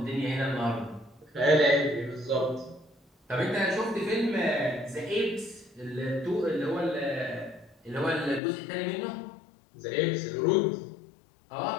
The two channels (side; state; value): right; drops out; at 8.4 s